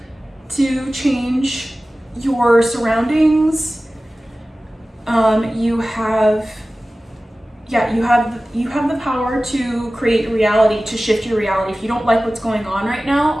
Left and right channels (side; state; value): both; normal; correlation 0.97